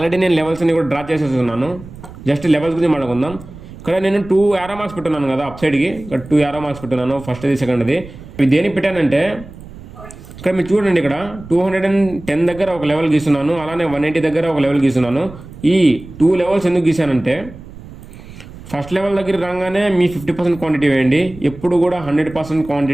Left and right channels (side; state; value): right; noise; rumble, 16 dB below the sound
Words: నేను లెవెల్స్ అన్ని కూడా డ్రా చేసేస్తున్నాను. జస్ట్ లెవెల్స్ గురించి మాట్లాడుకుందాం. ఇక్కడ నేను 2 యారో మార్క్స్ పెట్టున్నాను కదా అప్ సైడ్కి, ఇక్కడ 2 యారో మార్క్స్ పెట్టున్నాను, ఫస్ట్ది సెకండ్ది. ఇవి దేనికి పెట్టానంటే ఇక్కడ మీరు చూడండి, ఇక్కడ 210 దగ్గర ఒక లెవెల్ గీస్తున్నాను, అలానే 180 దగ్గర ఒక లెవెల్ గీస్తున్నాను. ఈ 2 లెవెల్స్ ఎందుకు గీసానంటే, ఫస్ట్ లెవెల్ దగ్గర రాగానే మీ 50% క్వాంటిటీ వేయండి. ఎప్పుడు కూడా 100%